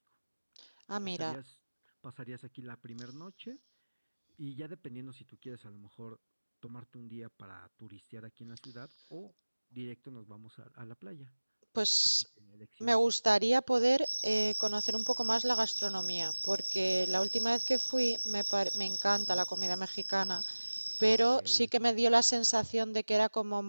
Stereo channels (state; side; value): inverted; both; correlation -1.00